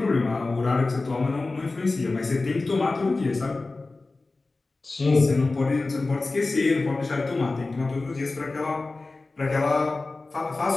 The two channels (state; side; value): quieter; right; 3.4 dB